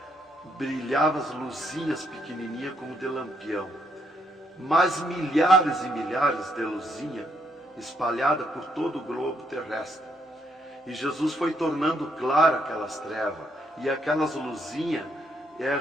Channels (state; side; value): normal; both; correlation 0.74